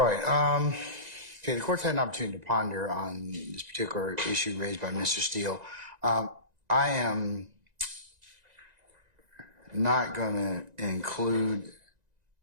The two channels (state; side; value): late; left; 1.9 ms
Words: right. Okay, the court's had an opportunity to ponder on this particular issue raised by Mr. Steele. I am not going to include